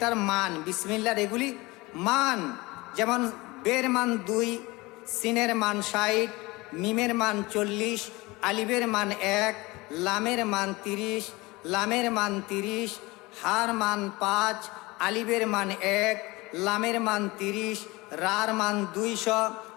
মান, বিসমিল্লাহর এগুলি মান, যেমন বের মান 2, সিনের মান 60, মিমের মান 40, আলিফের মান 1, লামের মান 30, লামের মান 30, হার মান 5, আলিফের মান 1, লামের মান 30, রার মান 200,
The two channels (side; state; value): right; quieter; 22.6 dB